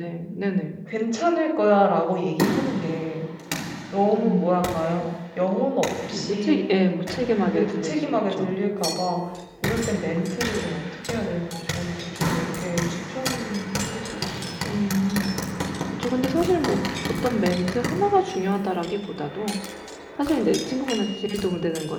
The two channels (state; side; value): identical; both; correlation 1.00